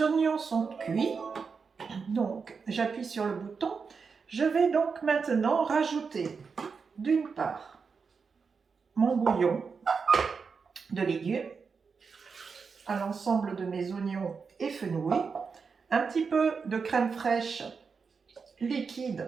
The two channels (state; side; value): quieter; left; 5.4 dB